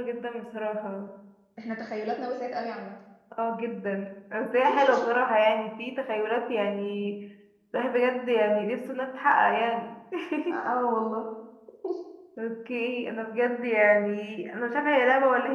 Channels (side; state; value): both; identical; correlation 1.00